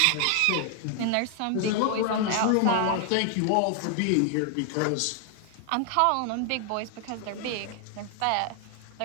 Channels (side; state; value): both; different; correlation 0.00